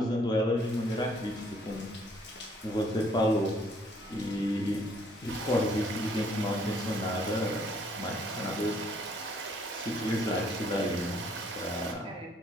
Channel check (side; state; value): both; normal; correlation 0.64